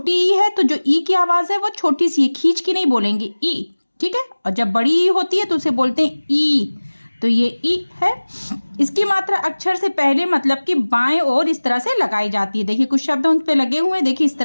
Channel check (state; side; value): inverted; both; correlation -1.00